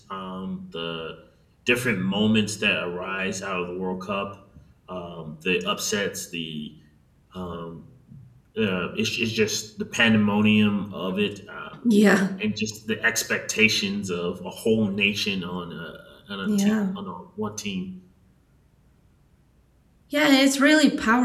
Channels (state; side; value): identical; both; correlation 1.00